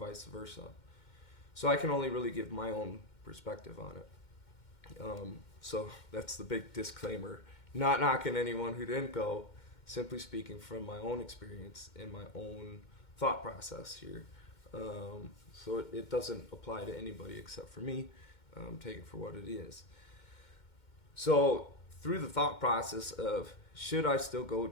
versa. So I can only really give my own perspective on it. So that's the big disclaimer. Not knocking anyone who didn't go, simply speaking from my own experience and my own thought process here. So it doesn't apply to anybody except for me. Take it for what it is. So through the thought process of, should I still go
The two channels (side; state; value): right; late; 2.1 ms